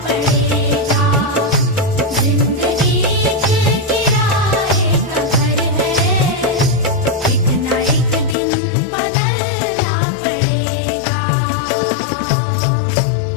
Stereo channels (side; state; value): right; drops out; at 8.3 s